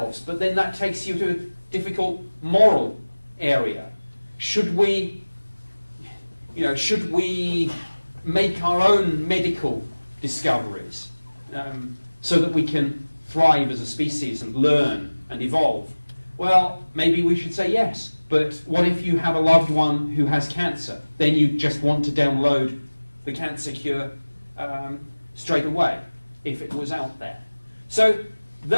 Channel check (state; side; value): inverted; both; correlation -1.00